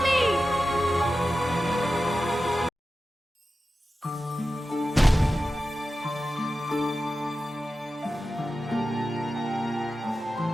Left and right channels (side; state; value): both; normal; correlation 0.93